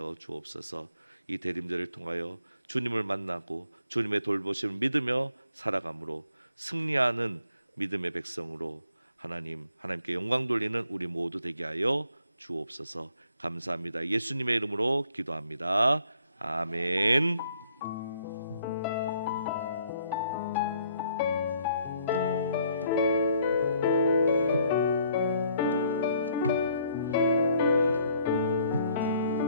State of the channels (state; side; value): inverted; both; correlation -0.66